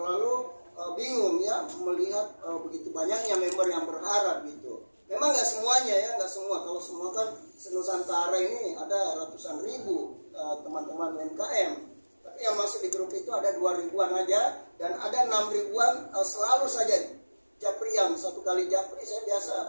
bingung ya melihat begitu banyaknya member yang berharap gitu. Memang nggak semuanya ya, nggak semua. Kalau semua kan Nusantara ini ada ratusan ribu teman-teman UMKM. Tapi yang masuk di grup itu ada 2 ribuan aja dan ada 6 ribuan selalu saja Japrian. Satu kali Japri saya biasa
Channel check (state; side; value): inverted; both; correlation -1.00